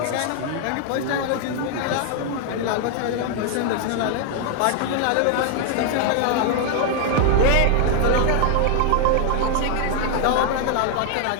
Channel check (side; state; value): both; different; correlation 0.00